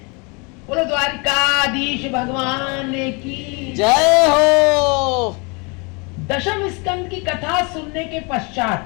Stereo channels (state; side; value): quieter; right; 30.9 dB